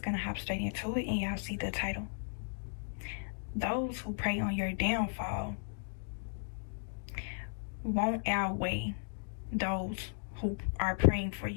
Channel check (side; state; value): right; silent; digital silence